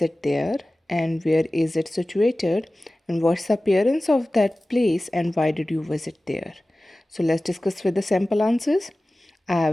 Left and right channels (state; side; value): normal; both; correlation 0.97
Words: there and where is it situated and what's the appearance of that place and why did you visit there? So let's discuss with the sample answers. I